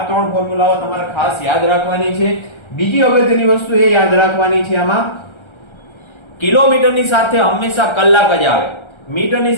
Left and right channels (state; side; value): late; right; 1.3 ms